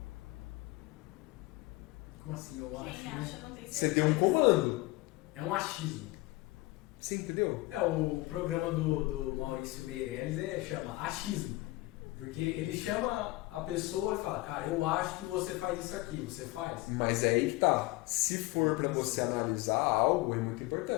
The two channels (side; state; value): right; quieter; 20.7 dB